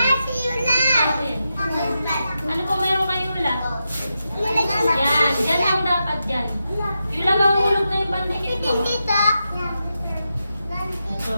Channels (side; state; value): both; inverted; correlation -0.88